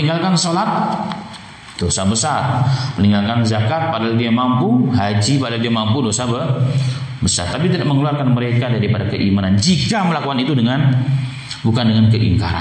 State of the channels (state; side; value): identical; both; correlation 1.00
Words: sholat, dosa besar. Meninggalkan zakat padahal dia mampu, haji padahal dia mampu, dosa besar. Tapi tidak mengeluarkan mereka daripada keimanan jika melakukan itu bukan dengan